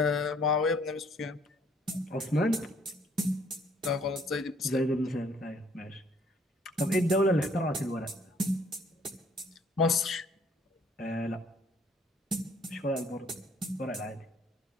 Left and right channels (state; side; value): normal; both; correlation 0.62